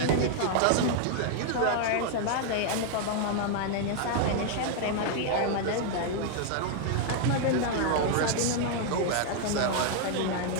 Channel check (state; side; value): different; both; correlation 0.00